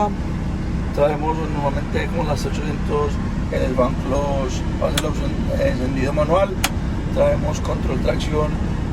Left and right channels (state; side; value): identical; both; correlation 1.00